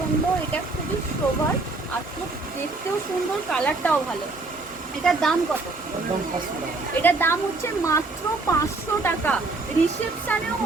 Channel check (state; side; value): quieter; left; 3.4 dB